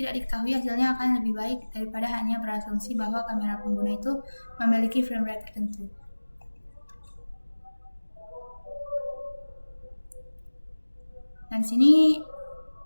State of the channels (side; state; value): both; inverted; correlation -1.00